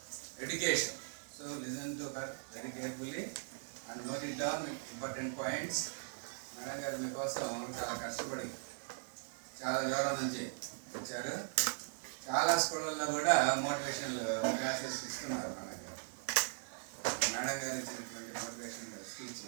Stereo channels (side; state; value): left; silent; digital silence